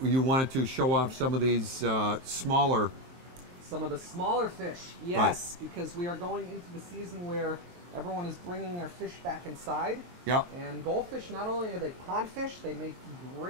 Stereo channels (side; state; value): left; late; 23 ms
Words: you wanted to show off some of these smaller. Some of the smaller fish, yes, because we are going into the season where everyone is bringing their fish back inside. Yep. And goldfish, not only are they pond fish, they make